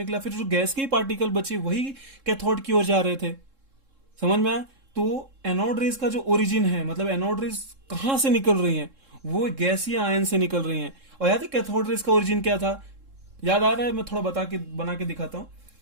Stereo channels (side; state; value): left; late; 3.7 ms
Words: फिर जो गैस के ही पार्टिकल बचे वही कैथोड की ओर जा रहे थे। समझ में आया? तो एनोड रेज का जो ओरिजिन है, मतलब एनोड रेज कहां से निकल रही हैं, वो गैसीय आयन से निकल रही हैं। और याद है कैथोड रेज का ओरिजिन क्या था? याद आ रहा है? मैं थोड़ा बना के दिखाता हूं।